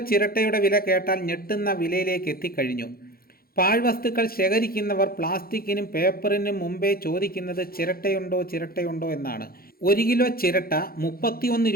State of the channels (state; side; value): late; right; 0.43 ms